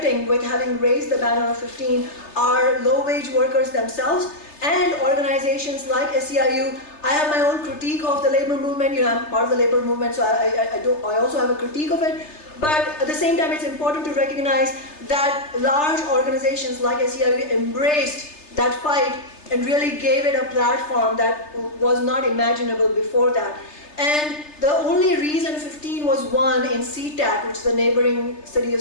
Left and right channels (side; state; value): right; late; 3.3 ms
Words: with having raised the banner of 15 are low-wage workers themselves and organizations like SEIU. I have my own critique of the labor movement. You know, I'm part of the labor movement, so I also have a critique of it. But at the same time, it's important to recognize that large organizations like SEIU embraced that fight and really gave it a platform that was not imaginable before that. And the only reason 15 was won in SeaTac, which is the neighboring city of